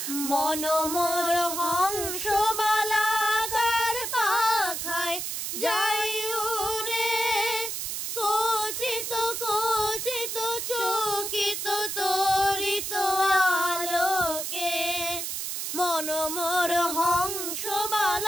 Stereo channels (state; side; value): noise; right; hiss, 3 dB below the sound